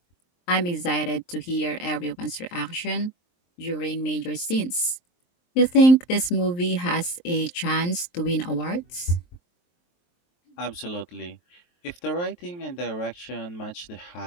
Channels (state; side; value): late; right; 23 ms